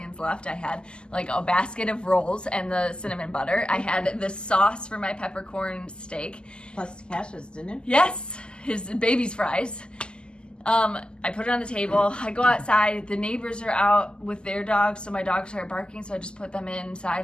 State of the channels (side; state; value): right; late; 0.048 ms